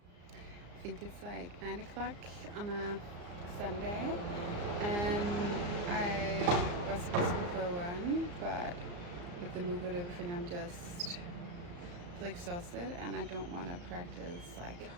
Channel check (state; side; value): late; left; 34 ms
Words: I think it's like 9 o'clock on a Sunday, and I was supposed to go for a run, but with the move and everything, I'm just feel exhausted, and I don't want to practice like